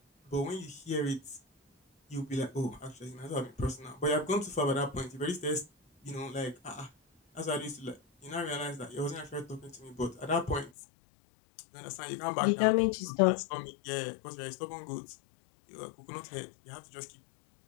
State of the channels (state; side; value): drops out; right; at 10.7 s